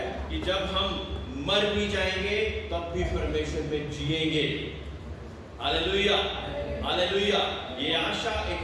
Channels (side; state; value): both; identical; correlation 1.00